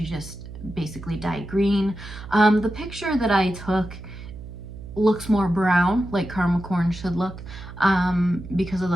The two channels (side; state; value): right; noise; hum, 13 dB below the sound